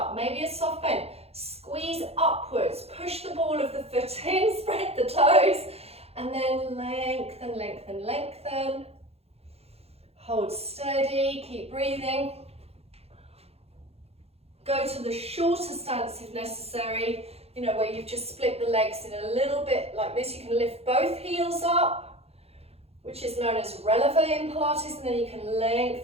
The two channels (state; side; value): late; left; 0.29 ms